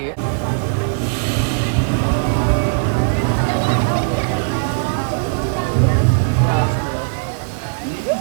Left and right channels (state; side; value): silent; left; digital silence